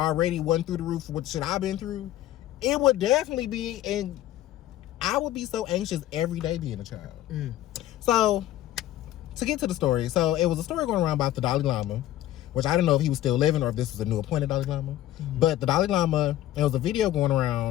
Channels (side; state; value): right; quieter; 13.6 dB